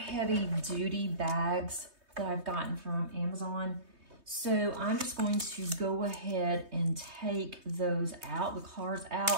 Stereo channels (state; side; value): late; left; 3.2 ms